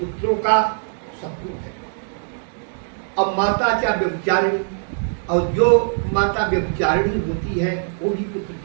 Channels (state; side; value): silent; left; digital silence